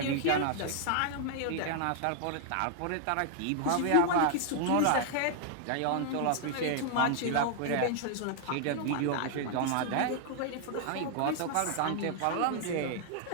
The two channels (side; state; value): both; different; correlation 0.00